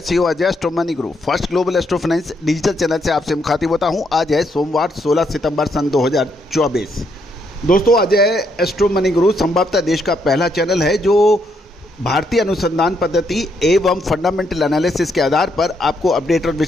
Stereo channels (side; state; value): both; normal; correlation 0.75